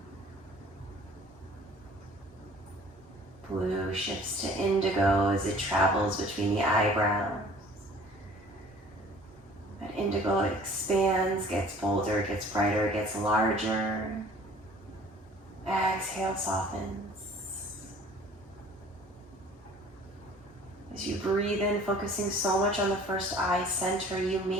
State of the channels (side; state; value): both; normal; correlation 0.50